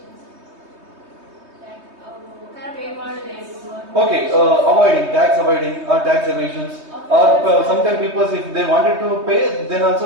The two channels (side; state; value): left; late; 3.2 ms